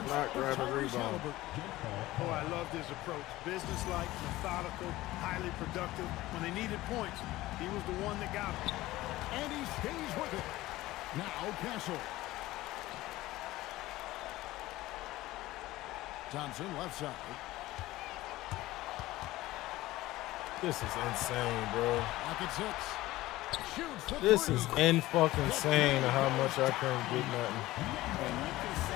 not of grabbing Tyrese rebound. Haliburton. Oh, I loved his approach. Businesslike, methodical, highly productive. When they needed points, he was the one that got them. And he stays with it. Now Castle. Thompson left side. This is insane, bro. Pocket 6. Shoots the This three. is fucking insane how much I couldn't get nothing. And you can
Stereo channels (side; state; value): right; quieter; 17.4 dB